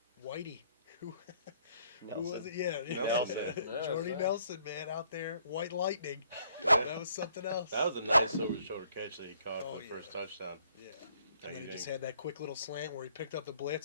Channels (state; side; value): inverted; both; correlation -0.65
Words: Whitey, who was it? Yeah, Nelson. Jordy Nelson, man, out there, white lightning. That was something else. That was a nice over-the-shoulder catch that he caught for the first touchdown. Yeah. And then he just had that quick little slant where he picked up the